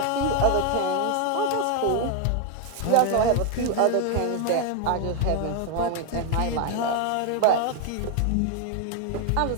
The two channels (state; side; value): different; both; correlation 0.01